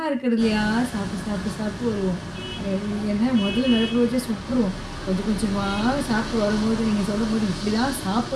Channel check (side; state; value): both; identical; correlation 1.00